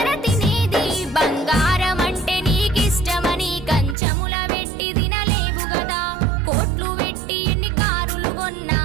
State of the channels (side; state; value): left; drops out; at 4.0 s